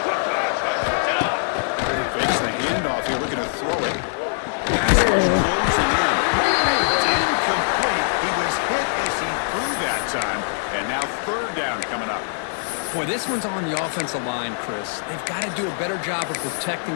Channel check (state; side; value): silent; right; digital silence